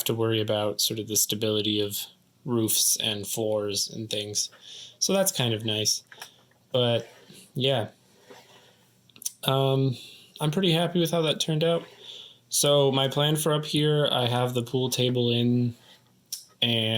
to worry about sort of the stability of roofs and floors and things. So that's kind of nice. But yeah, I'm pretty happy with how that turned out. So my plan for up here, I have the pool table in,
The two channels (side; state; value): both; identical; correlation 1.00